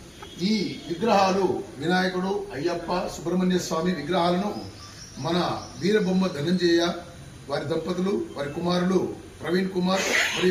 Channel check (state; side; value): identical; both; correlation 1.00